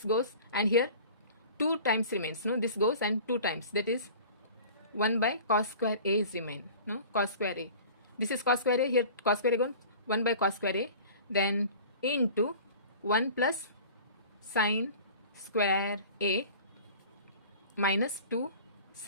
goes, and here 2 times remains, no? This goes and 2 times, that is 1 by cos square a is remain, no? Cos square a. This is cos square a, here cos square a gone, 1 by cos square a, then into 1 plus sine square A minus 2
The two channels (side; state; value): both; inverted; correlation -0.42